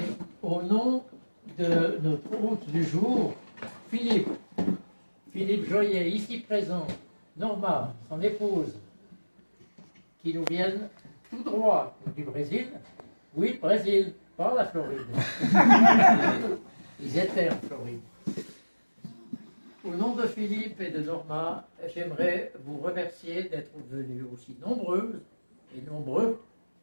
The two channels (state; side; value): inverted; both; correlation -1.00